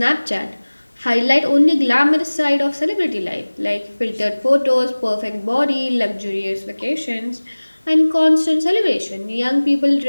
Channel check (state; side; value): inverted; both; correlation -1.00